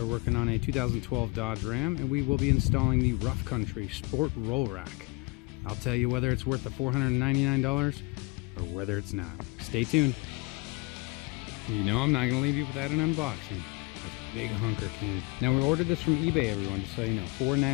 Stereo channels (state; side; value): quieter; right; 27.5 dB